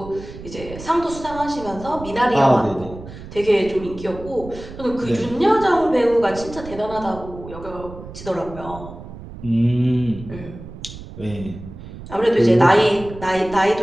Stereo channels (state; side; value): noise; right; rumble, 14 dB below the sound